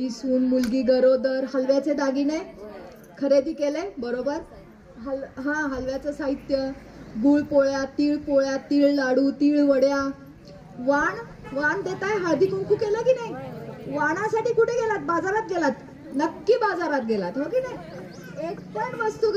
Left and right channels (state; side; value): identical; both; correlation 1.00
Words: सून मुलगी गरोदर, हलव्याचे दागिने खरेदी केले, बरोबर? हलव्याचं साहित्य, गुळ पोळ्या, तीळ लाडू, तीळ वड्या. वाण देताय, हळदी कुंकू केलं की नाही? वाणासाठी कुठे गेलात? बाजारात गेलात? नक्की बाजारात गेलात, हो की नाही? एक पण वस्तू